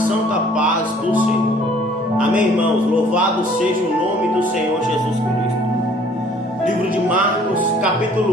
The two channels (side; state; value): both; normal; correlation 0.56